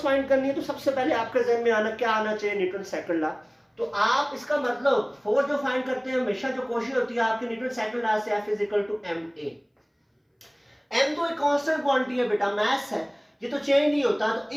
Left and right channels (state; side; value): identical; both; correlation 1.00